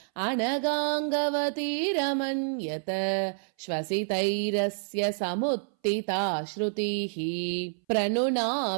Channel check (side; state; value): left; silent; 59 dB below the other